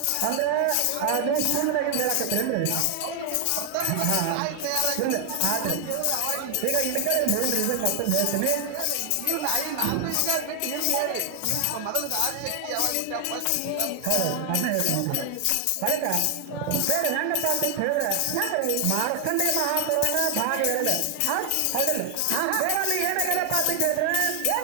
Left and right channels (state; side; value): different; both; correlation 0.00